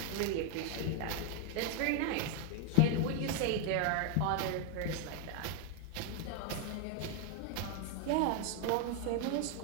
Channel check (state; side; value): different; both; correlation 0.01